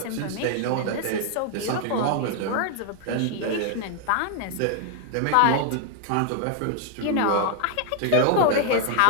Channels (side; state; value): both; different; correlation 0.00